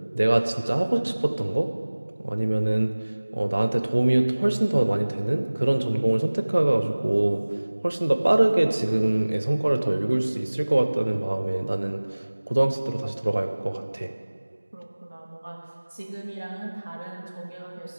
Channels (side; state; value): both; inverted; correlation -1.00